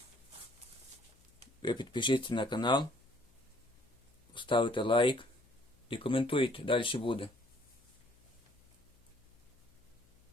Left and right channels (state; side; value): noise; left; hum, 30 dB below the sound